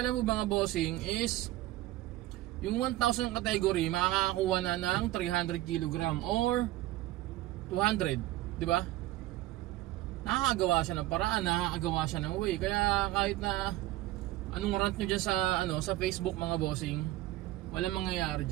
mga bossing is yung 1,000 category makakakuha na ng 300 kg or 200, di ba? Nakakagawa siya ng paraan, nakakagawa siya ng way. Kaya kahit na anong rant nyo dyan sa Facebook mga bossing, walang mangyayari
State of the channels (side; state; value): left; quieter; 16.3 dB